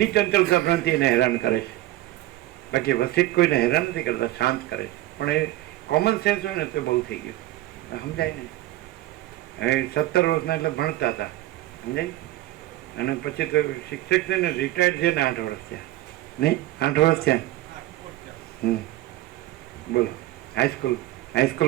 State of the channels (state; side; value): quieter; left; 16.1 dB